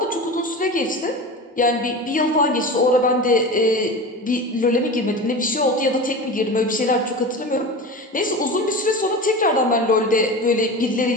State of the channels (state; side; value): normal; both; correlation 0.29